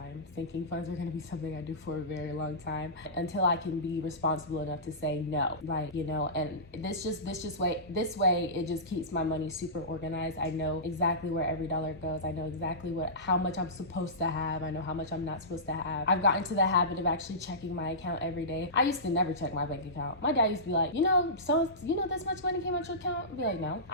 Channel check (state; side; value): normal; both; correlation -0.19